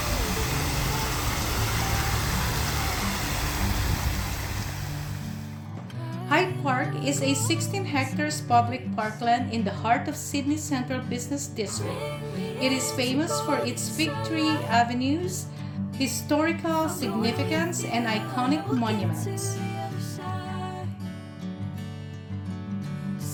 Hyde Park is a 16 hectares public parkland in the heart of Sydney's Central Business District. It is famous for its fig tree avenues, historical significance, and iconic monuments.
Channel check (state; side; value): identical; both; correlation 1.00